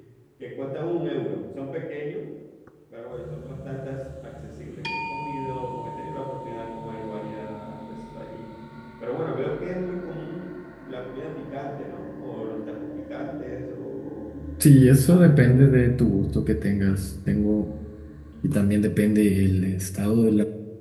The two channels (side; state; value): both; identical; correlation 1.00